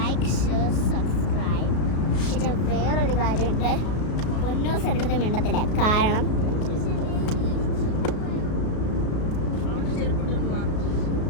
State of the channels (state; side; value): late; right; 33 ms